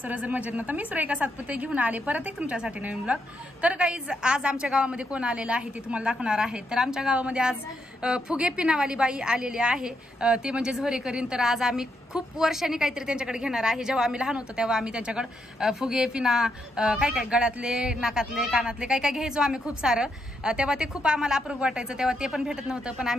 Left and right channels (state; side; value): normal; both; correlation 0.80